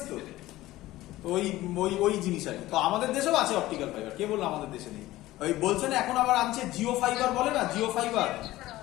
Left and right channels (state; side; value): quieter; right; 16.7 dB